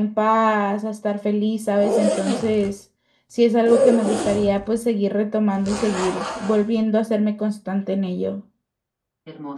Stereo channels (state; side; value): identical; both; correlation 1.00